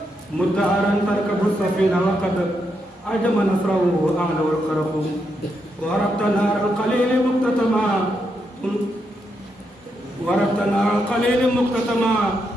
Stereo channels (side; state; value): both; normal; correlation 0.81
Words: مدعرا تركب السفينة وقد عجم نصره أعلى والقرق وربط نار القليل مقتتما